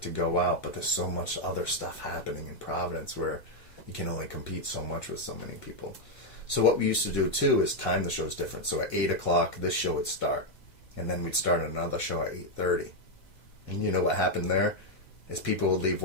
to go out, but there's so much other stuff happening in Providence where you can only compete so much with so many people. So what we used to do too is time the shows different. So at 8 o'clock, this show would start, and then we'd start another show at 8:30. And you know what happened there? Is people would leave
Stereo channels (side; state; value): right; late; 2.0 ms